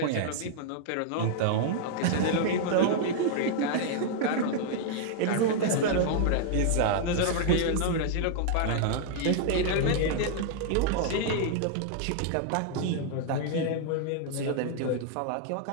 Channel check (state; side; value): different; both; correlation -0.01